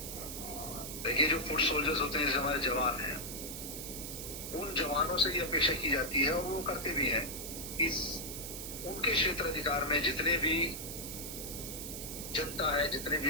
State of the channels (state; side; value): noise; right; hiss, 7 dB below the sound